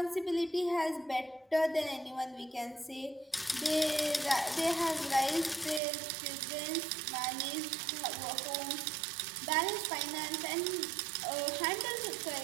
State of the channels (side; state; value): left; drops out; at 5.8 s